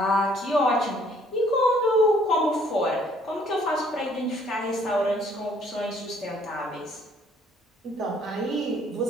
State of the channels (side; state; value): both; normal; correlation 0.62